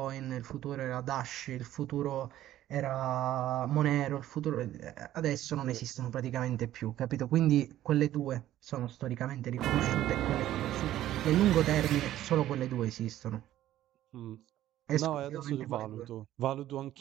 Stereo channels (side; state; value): left; quieter; 13.3 dB